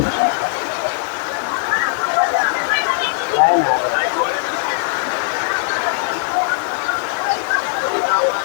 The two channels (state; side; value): silent; right; digital silence